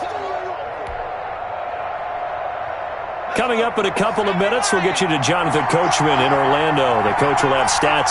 Coming up in a couple of minutes, we'll get you to Jonathan Coachman in Orlando. The coach will have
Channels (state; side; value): identical; both; correlation 1.00